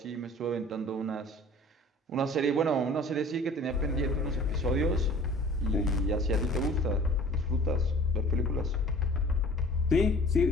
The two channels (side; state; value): both; normal; correlation 0.47